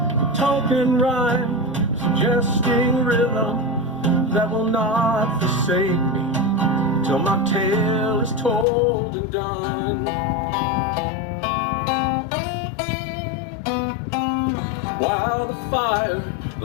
token rhyme, suggesting rhythm that will not forsake me till my tale is told and done. While the fire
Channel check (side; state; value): right; drops out; at 8.7 s